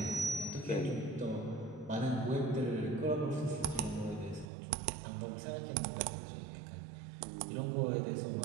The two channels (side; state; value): left; drops out; at 4.5 s